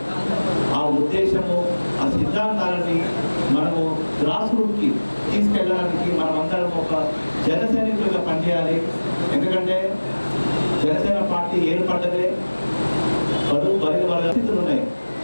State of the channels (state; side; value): inverted; both; correlation -1.00